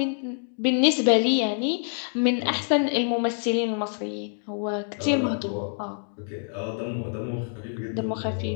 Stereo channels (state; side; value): silent; right; 61 dB below the other